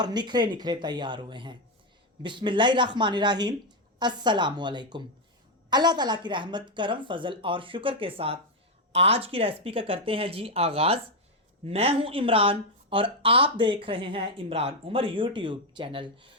निखरे निखरे तैयार हुए हैं। बिस्मिल्लाहिर्रहमानिर्रहीम। अस्सलामु अलैकुम। अल्लाह ताला की रहमत, करम, फजल और शुक्र के साथ आज की रेसिपी का करते हैं जी आगाज़। मैं हूं इमरान और आप देख रहे हैं इमरान उमर यूट्यूब चैनल।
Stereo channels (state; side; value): normal; both; correlation 0.05